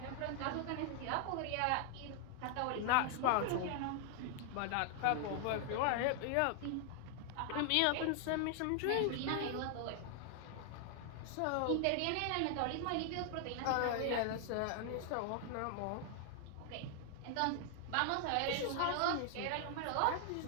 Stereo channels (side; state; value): both; different; correlation 0.00